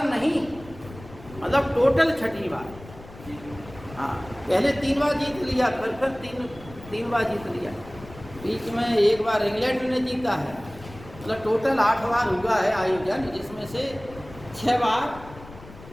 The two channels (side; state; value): left; noise; rumble, 18 dB below the sound